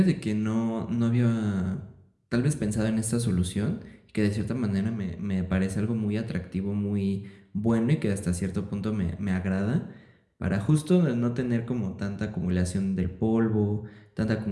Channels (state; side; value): identical; both; correlation 1.00